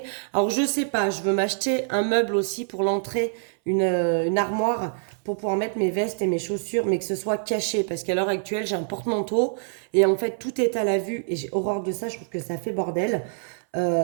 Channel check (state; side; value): silent; left; 62 dB below the other